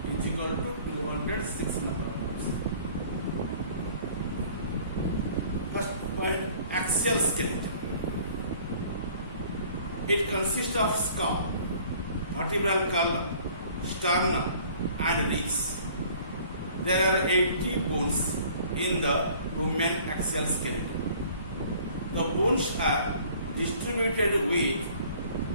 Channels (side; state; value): both; inverted; correlation -0.53